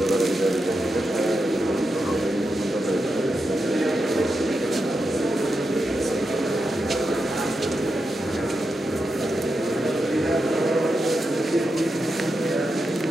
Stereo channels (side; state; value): both; normal; correlation 0.87